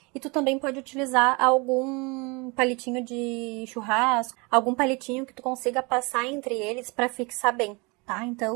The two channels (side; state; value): left; quieter; 28.5 dB